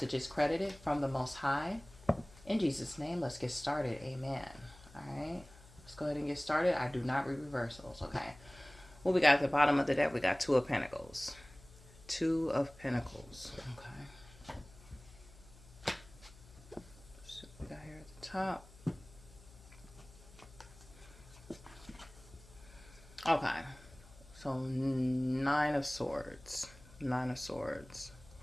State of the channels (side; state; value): left; noise; hum, 22 dB below the sound